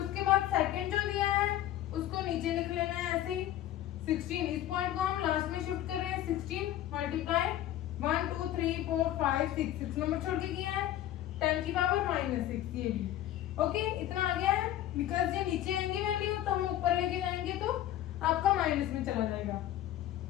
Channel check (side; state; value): right; quieter; 12.9 dB